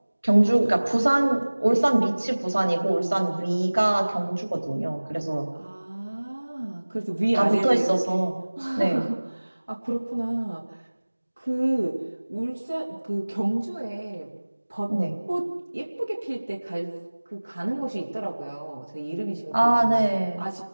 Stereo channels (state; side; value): inverted; both; correlation -1.00